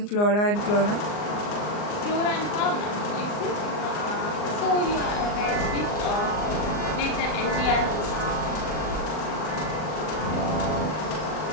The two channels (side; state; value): right; late; 39 ms